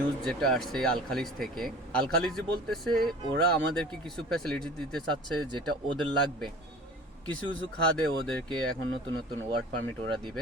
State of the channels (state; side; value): normal; both; correlation 0.43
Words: যেটা আসছে আল খালিজ থেকে, আল খালিজি বলতেছে ওরা আমাদেরকে কিছু ফ্যাসিলিটি দিতে চাচ্ছে যেটা ওদের লাগবে। কিছু কিছু খাদে ওদেরকে এখন নতুন নতুন ওয়ার্ক পারমিট ওরা